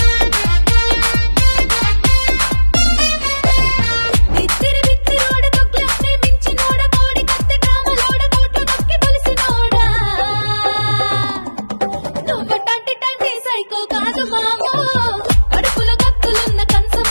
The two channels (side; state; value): both; inverted; correlation -1.00